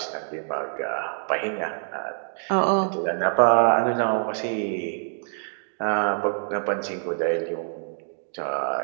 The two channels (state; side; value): silent; left; digital silence